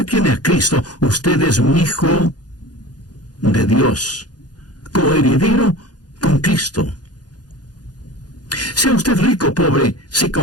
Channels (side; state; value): right; late; 0.69 ms